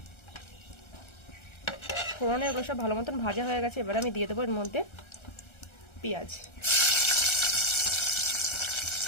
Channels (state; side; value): late; right; 1.3 ms